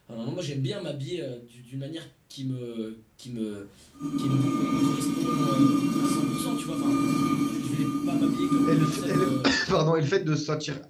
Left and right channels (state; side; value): identical; both; correlation 1.00